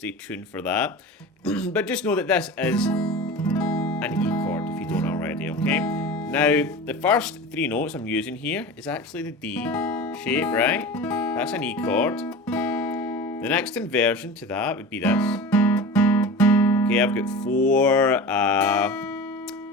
tuned for that. But just know that this is an E chord, if you don't already, okay? Now, the first three notes I'm using here is actually the D shape, right? That's an E chord. The next inversion to that would be this. Okay, I've got 4,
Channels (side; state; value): both; normal; correlation 0.32